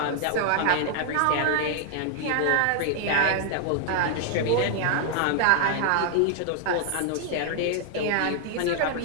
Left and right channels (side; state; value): both; different; correlation 0.00